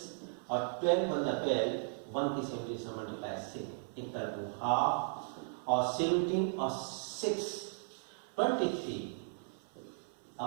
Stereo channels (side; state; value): left; silent; 54 dB below the other